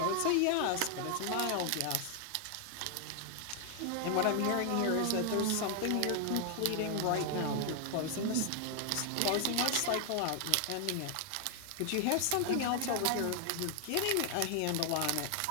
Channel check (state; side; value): different; both; correlation 0.00